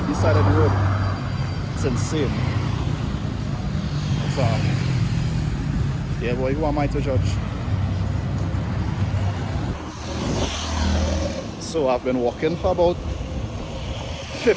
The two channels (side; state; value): both; identical; correlation 1.00